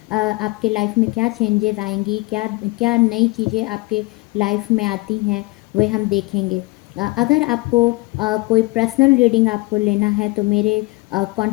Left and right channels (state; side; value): quieter; right; 23.9 dB